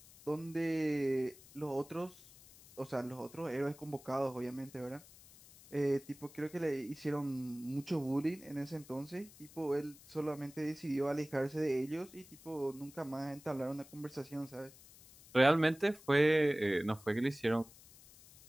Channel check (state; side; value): noise; left; hiss, 21 dB below the sound